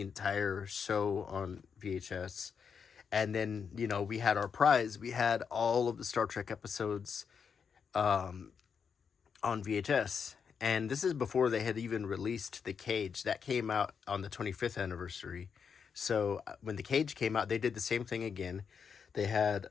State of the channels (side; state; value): right; quieter; 6.5 dB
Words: entire show on VHS. And then, we had our prize. We had all of the Star Trek episodes on VHS. And this is before they had even released The Cage. That came out on the 25th anniversary. So when The Cage came out, they did the same thing again. They had